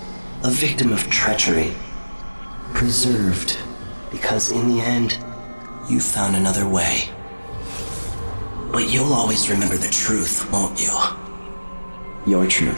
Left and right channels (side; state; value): both; inverted; correlation -1.00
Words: a victim of treachery, preserved because in the end, you found another way. But you'll always remember the truth, won't you? Your